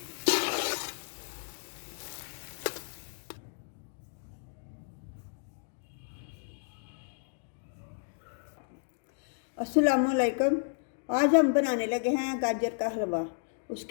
अस्सलामुअलैकुम। आज हम बनाने लगे हैं गाजर का हलवा।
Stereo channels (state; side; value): silent; right; digital silence